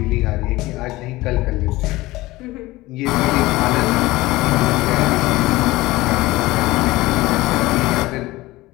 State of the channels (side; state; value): right; quieter; 19.2 dB